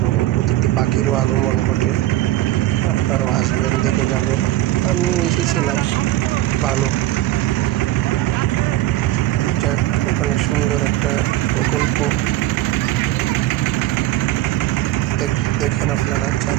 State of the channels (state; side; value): quieter; left; 15.1 dB